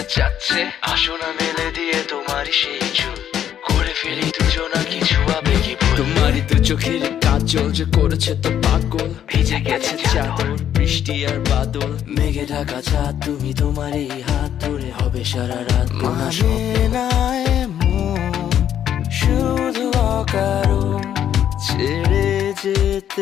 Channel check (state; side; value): quieter; right; 10.0 dB